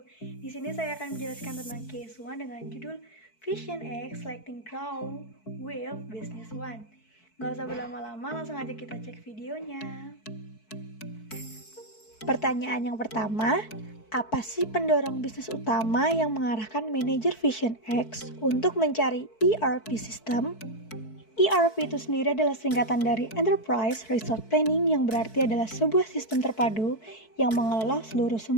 Di sini saya akan menjelaskan tentang case 1 dengan judul Vision X Selecting Crown with Business One. Gak usah berlama-lama, langsung aja kita cek videonya. Pertanyaan yang pertama, apa sih pendorong bisnis utama yang mengarahkan manajer Vision X untuk mencari ERP system? ERP itu sendiri adalah singkatan dari Enterprise Resource Planning, yang berarti adalah sebuah sistem terpadu yang mengelola seluruh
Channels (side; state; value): right; late; 4.6 ms